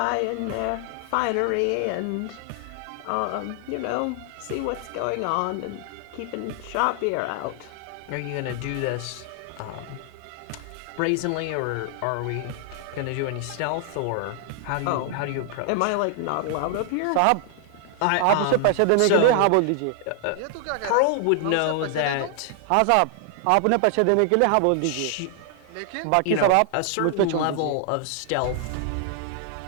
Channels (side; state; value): both; different; correlation 0.00